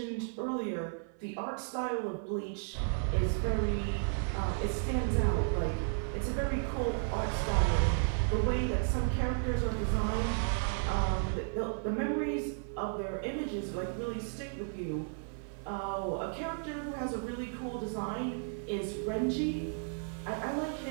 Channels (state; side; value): silent; left; 55 dB below the other